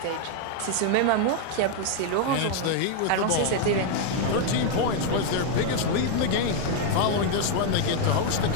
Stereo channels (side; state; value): both; different; correlation 0.01